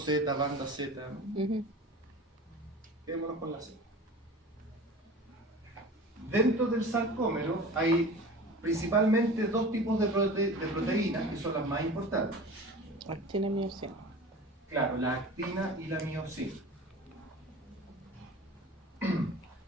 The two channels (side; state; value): both; normal; correlation 0.37